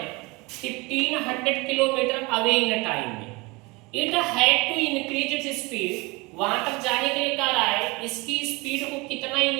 1500 किलोमीटर अवे इन टाइम में, it had to increase its speed. वहां तक जाने के लिए कह रहा है इसकी स्पीड को कितना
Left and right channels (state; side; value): quieter; left; 25.1 dB